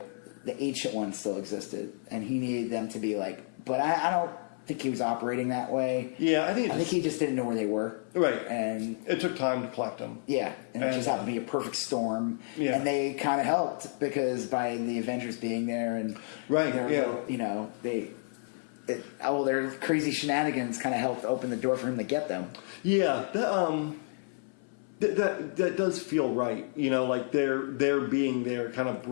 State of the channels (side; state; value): right; silent; 58 dB below the other